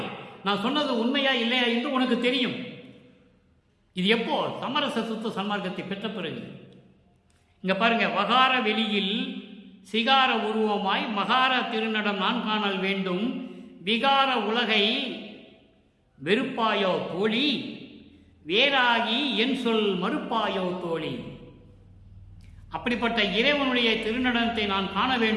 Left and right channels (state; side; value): identical; both; correlation 1.00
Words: நான் சொன்னது உண்மையா இல்லையா என்று உனக்கு தெரியும். இது எப்போ? சமரச சுத்த சன்மார்க்கத்தை பெற்ற பிறகு. இங்க பாருங்க, வகார வெளியில் சிகார உருவமாய் மகார திருநடம் நான் காணல் வேண்டும். விகார உலகை வெறுப்பாயோ தோழி, வேறாகி என் சொல் மறுப்பாயோ தோழி. அப்படிப்பட்ட இறைவனுடைய திருநடனத்தை நான் காண